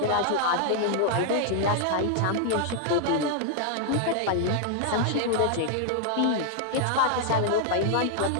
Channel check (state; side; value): different; both; correlation 0.00